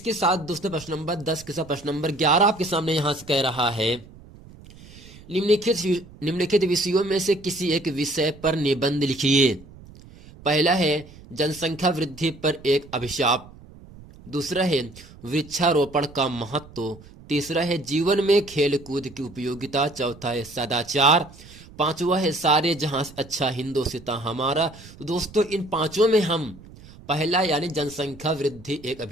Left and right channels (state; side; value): noise; right; rumble, 20 dB below the sound